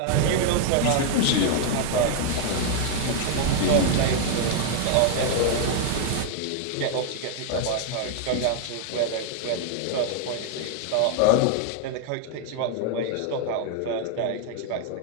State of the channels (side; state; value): both; different; correlation 0.00